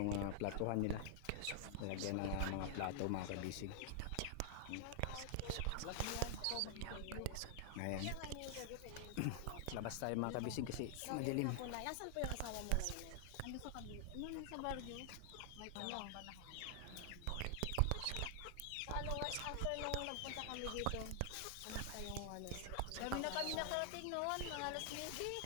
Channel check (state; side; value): different; both; correlation 0.00